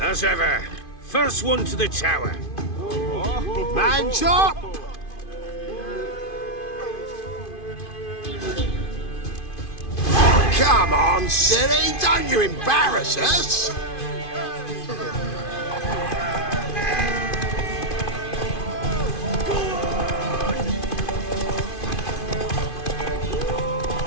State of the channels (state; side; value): late; right; 2.5 ms